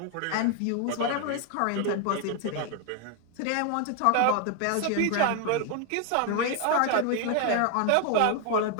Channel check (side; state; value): both; different; correlation 0.01